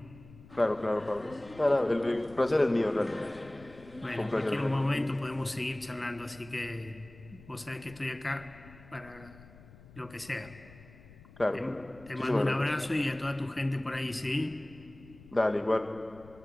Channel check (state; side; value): noise; left; rumble, 21 dB below the sound